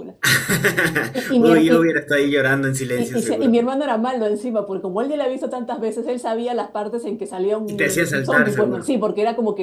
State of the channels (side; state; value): both; identical; correlation 1.00